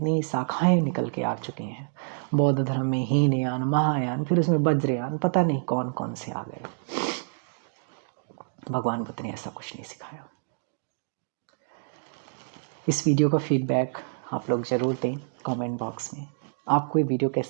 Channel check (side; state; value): left; silent; digital silence